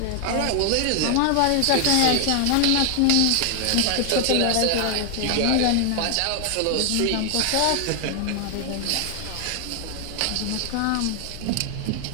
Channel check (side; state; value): both; different; correlation 0.00